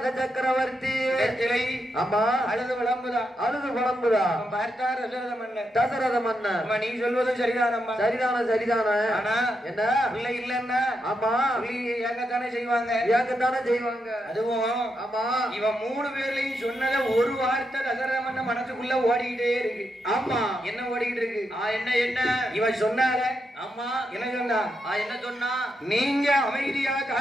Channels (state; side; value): normal; both; correlation 0.83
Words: ஆமா அழுது விளம்புதா பார்த்தார் தசரத மன்னன். நீ சொல்வதும் சரிதானம்மா. சரிதான ஆனா என்ன பிள்ளை இல்லன்னா ஆமா ஏங்கத்தானே செய்வாங்க. அதுவும் ஆமா இவன் 3 பேர்லயும் சொன்னத ஒரு வார்த்தை தசரத மன்னன் மனசுக்குள்ள ஓடிக்கிட்டே இருக்கு. ஆமா என்ன ஓடிக்கிட்டு இருக்கு? என்ன இவன் சொன்னால ஆமா என்ன சொன்னா நீங்க அமைதியா